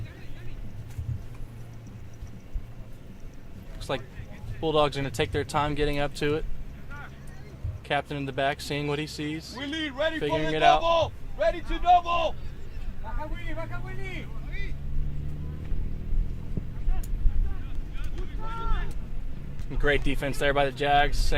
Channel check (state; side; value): identical; both; correlation 1.00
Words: Looks like Bulldogs are going to take their time getting up to it. Captain in the back, seeing what he sees, Willie, ready figuring for the it double. out. Ready to double. Great defense there by the Jags,